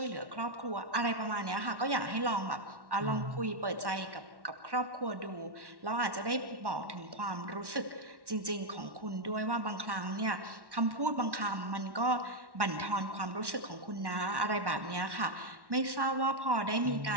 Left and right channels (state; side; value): late; left; 1.1 ms